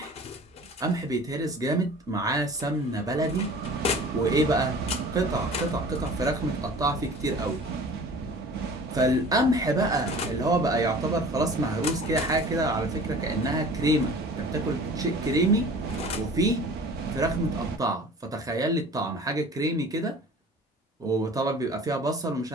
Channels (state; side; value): normal; both; correlation 0.44